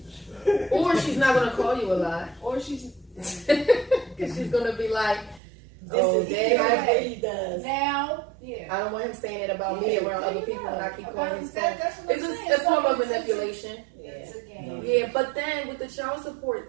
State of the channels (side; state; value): left; drops out; at 5.4 s